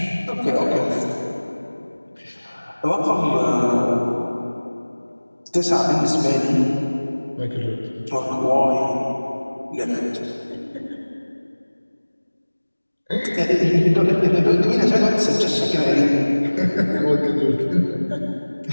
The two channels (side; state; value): both; inverted; correlation -1.00